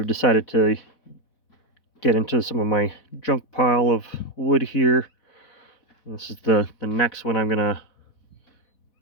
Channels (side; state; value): right; late; 4.1 ms